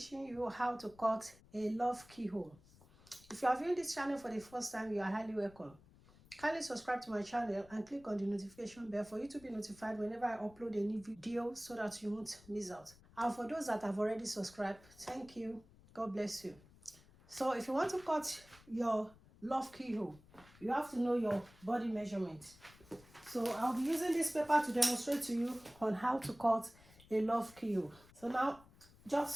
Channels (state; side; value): noise; left; rumble, 24 dB below the sound